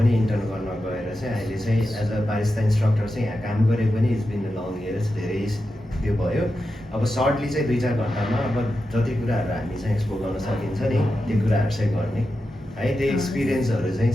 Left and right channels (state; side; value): normal; both; correlation 0.90